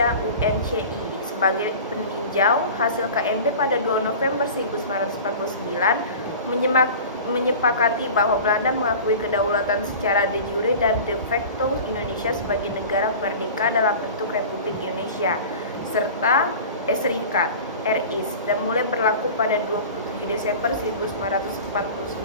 UNCI sebagai peninjau. Hasil KMB pada 2 November 1949 menyepakati bahwa Belanda mengakui kedaulatan secara de jure dan de facto Indonesia sebagai negara merdeka dalam bentuk Republik Indonesia serta Serikat RIS dan mulai berlaku pada 27 Desember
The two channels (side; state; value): both; inverted; correlation -0.37